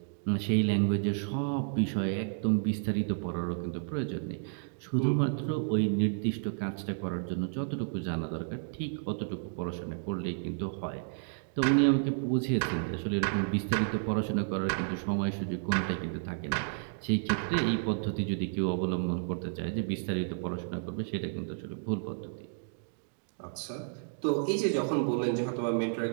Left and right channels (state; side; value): silent; left; digital silence